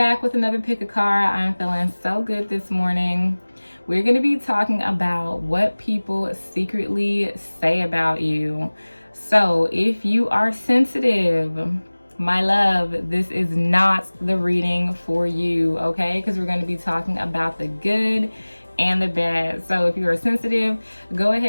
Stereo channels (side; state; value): both; inverted; correlation -1.00